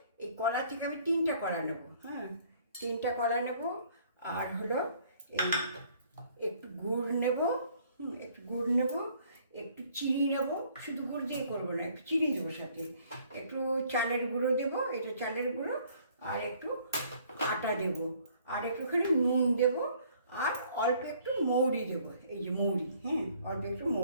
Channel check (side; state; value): both; inverted; correlation -0.60